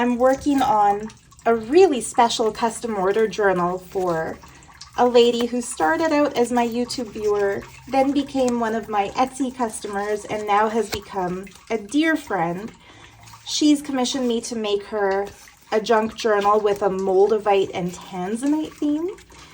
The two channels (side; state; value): both; identical; correlation 1.00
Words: working on a really special custom order journal for a lady who started out as my YouTube viewer, then became one of my Etsy customers, and now has become a dear friend. She's commissioned me to make her a junk journal with a moldavite and tanzanite theme.